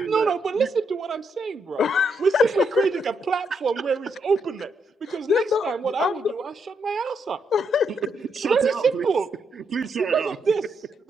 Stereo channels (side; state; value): both; normal; correlation 0.78